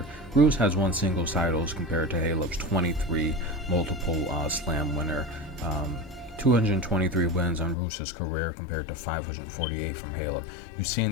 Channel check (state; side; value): drops out; right; at 7.8 s